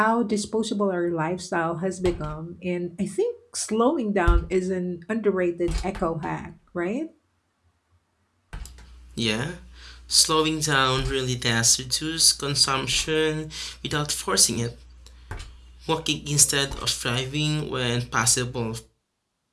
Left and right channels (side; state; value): both; identical; correlation 1.00